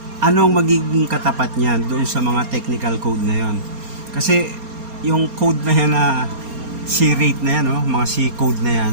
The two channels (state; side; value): late; left; 4.3 ms